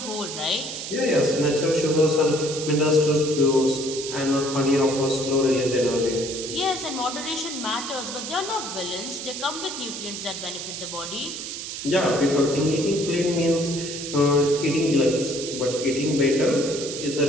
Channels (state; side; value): noise; right; hiss, 7 dB below the sound